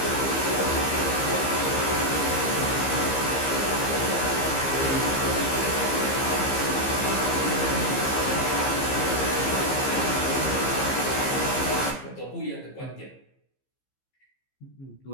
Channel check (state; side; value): late; right; 15 ms